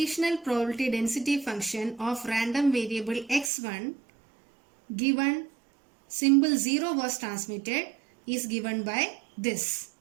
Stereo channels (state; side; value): drops out; left; at 3.5 s